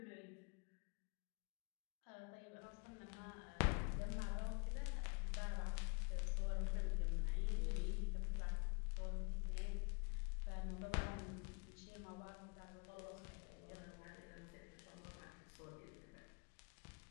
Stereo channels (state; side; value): quieter; right; 33.5 dB